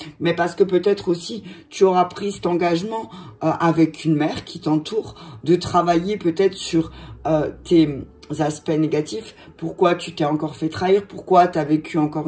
mais parce que peut-être aussi, tu auras pris cet engagement avec une mère qui t'entoure, de travailler peut-être sur tes aspects négatifs. Pourquoi tu t'es encore fait trahir? Pourquoi tu as vécu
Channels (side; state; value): both; identical; correlation 1.00